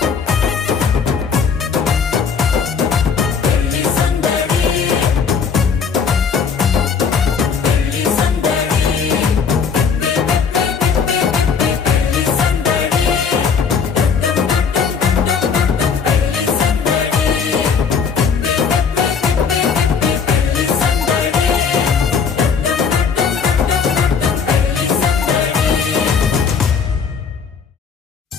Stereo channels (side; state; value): right; quieter; 6.1 dB